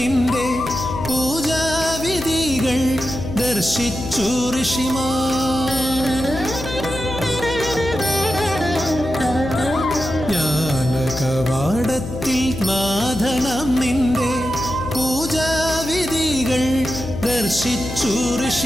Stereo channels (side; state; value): left; noise; hum, 9 dB below the sound